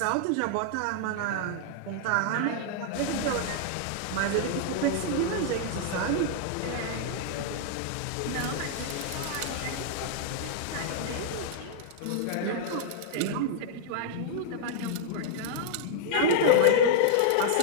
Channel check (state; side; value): different; both; correlation -0.02